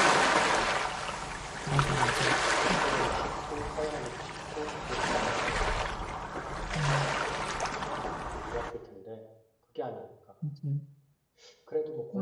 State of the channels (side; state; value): both; identical; correlation 1.00